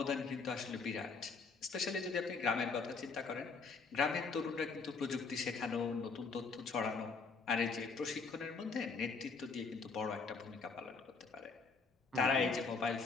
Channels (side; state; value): right; quieter; 4.7 dB